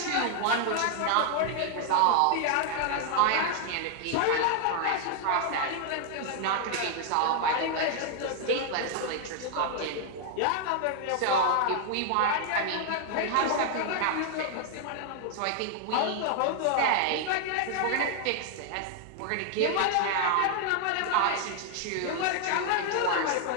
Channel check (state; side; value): different; both; correlation 0.00